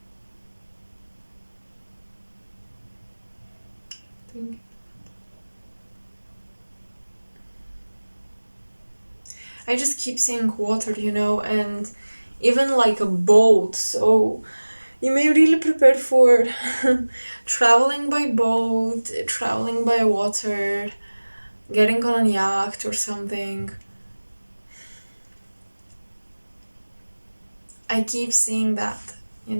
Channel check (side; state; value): both; inverted; correlation -1.00